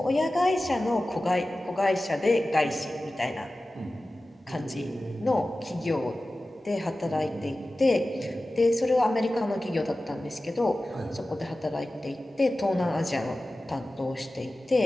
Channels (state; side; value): normal; both; correlation 0.96